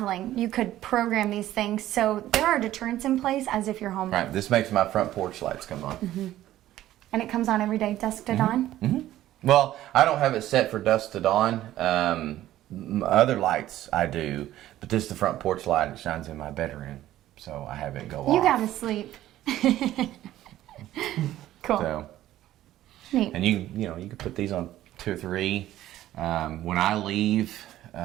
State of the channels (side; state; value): left; quieter; 13.9 dB